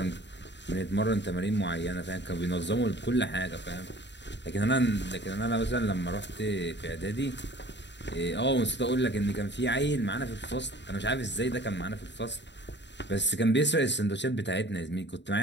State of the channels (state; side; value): late; right; 0.52 ms